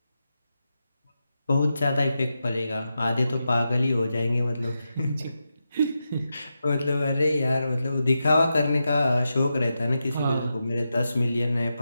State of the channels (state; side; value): inverted; both; correlation -0.88